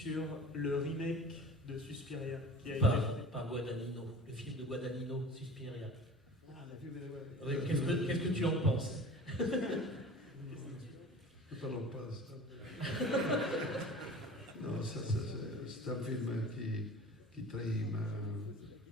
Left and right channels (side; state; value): both; normal; correlation 0.40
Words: le remake de Suspiria qui a été par Guadagnino, le film de Guadagnino, Suspiria. Ah, la vue, ouais. Oui, qu'est-ce que tu en penses? Ne parlons pas de ça. Non, c'est un film qui trahit